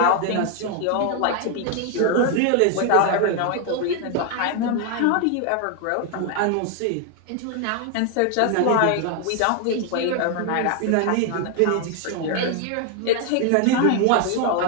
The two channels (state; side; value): different; both; correlation 0.00